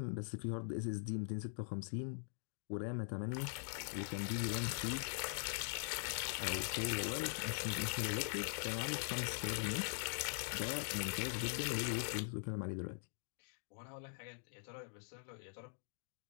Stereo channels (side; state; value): right; silent; digital silence